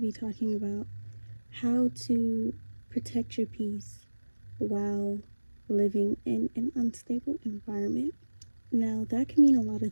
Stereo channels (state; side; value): inverted; both; correlation -1.00